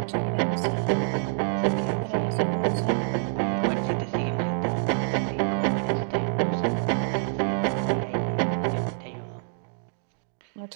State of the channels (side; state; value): left; silent; digital silence